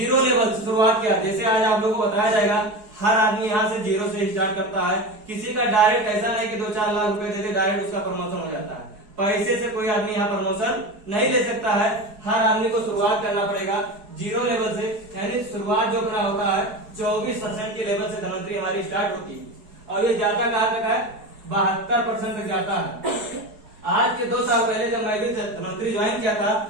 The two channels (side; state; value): left; late; 4.8 ms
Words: लेवल से शुरुआत किया। जैसे आज आप लोगों को बताया जाएगा, हर आदमी यहाँ से 0 से स्टार्ट करता है। किसी का डायरेक्ट ऐसा नहीं कि 2-4 लाख रुपए देके डायरेक्ट उसका प्रमोशन हो जाता है। पैसे से कोई आदमी यहाँ प्रमोशन नहीं ले सकता है। हर आदमी को शुरुआत करना पड़ेगा 0 लेवल से। यानी शुरुआत जो अपना होता है 24% के लेवल से धनवंतरी हमारी स्टार्ट होती है और ये जाता कहाँ तक है? 72% तक जाता है। आज के 2 साल पहले जब मैं भी धनवंतरी ज्वाइन किया था